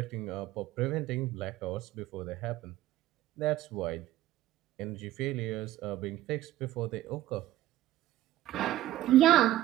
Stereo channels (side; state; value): left; quieter; 14.4 dB